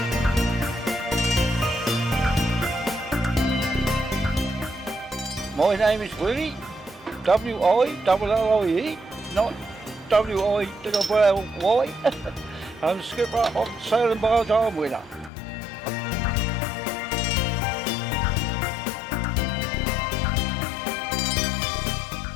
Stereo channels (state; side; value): drops out; right; at 15.3 s